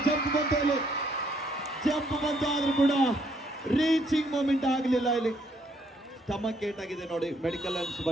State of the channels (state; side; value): normal; both; correlation 0.69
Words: ಜಂಪ್ ಬಂತು ಆದ್ರೂ ಕೂಡ ರೀಚಿಂಗ್ ಮೂಮೆಂಟ್ ಆಗಲಿಲ್ಲ. ಇಲ್ಲಿ ಸ್ಟಮಕ್ ಏಟ್ ಆಗಿದೆ ನೋಡಿ. ಮೆಡಿಕಲ್ ಅನ್ಸ್